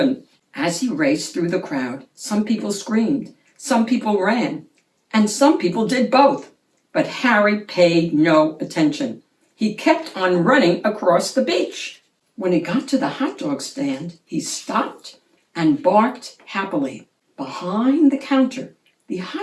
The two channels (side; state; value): both; identical; correlation 1.00